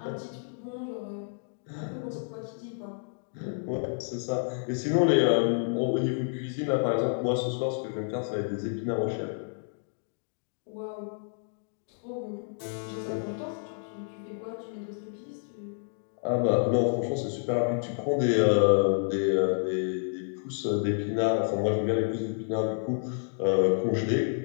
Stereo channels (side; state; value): right; silent; digital silence